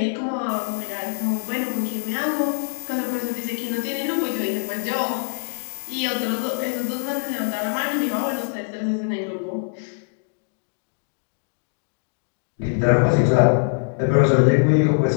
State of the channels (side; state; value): right; silent; digital silence